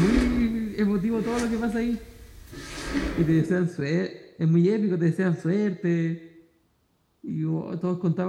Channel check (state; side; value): identical; both; correlation 1.00